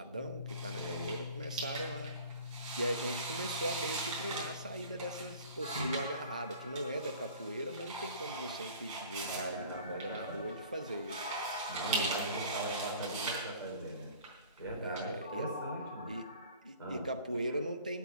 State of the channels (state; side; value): inverted; both; correlation -0.46